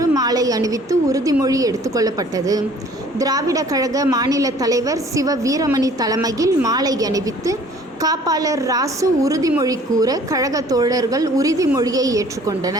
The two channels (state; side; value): normal; both; correlation 0.53